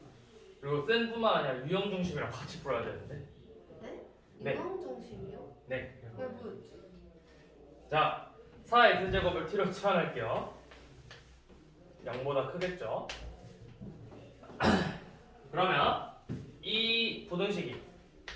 그리고 센뿐만 아니라 유형 중심이랑 같이 풀어야 되는데. 네? 네. 유형 중심이요? 네. 왜 뭐였지? 자, 4x제곱을 t로 치환할게요. 0보다 크겠죠? 그러면 이 부등식이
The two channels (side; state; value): both; identical; correlation 1.00